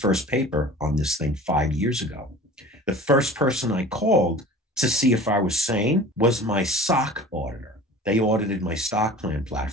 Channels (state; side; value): normal; both; correlation 0.42